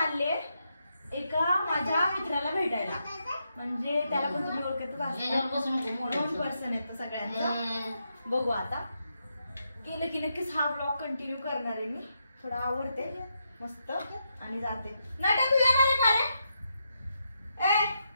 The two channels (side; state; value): both; inverted; correlation -0.82